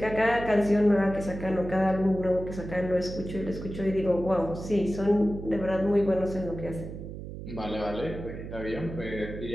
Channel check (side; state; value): right; noise; hum, 10 dB below the sound